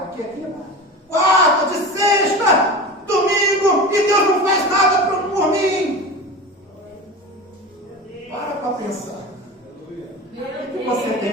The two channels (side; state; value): both; normal; correlation 0.30